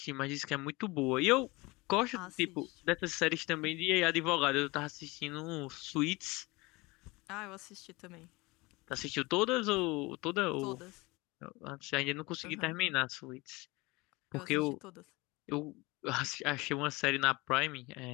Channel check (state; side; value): quieter; right; 23.5 dB